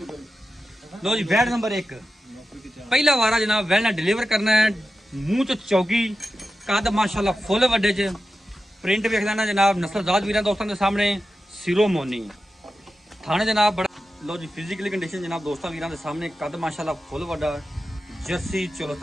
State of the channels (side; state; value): both; normal; correlation 0.92